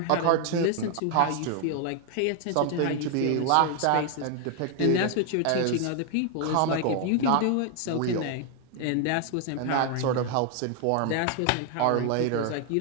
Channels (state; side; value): different; both; correlation 0.00